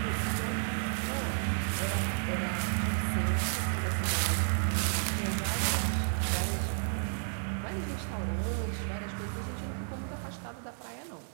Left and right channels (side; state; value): left; silent; digital silence